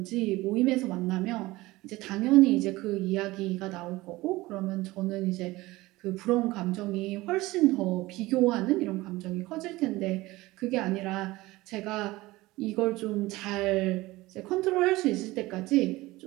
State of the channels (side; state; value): left; quieter; 19.5 dB